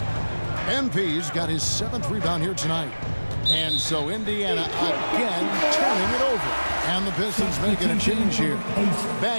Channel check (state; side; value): inverted; both; correlation -1.00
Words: MP's got his 7th rebound here tonight. And so Indiana again turning it over. And the Pistons making a change here.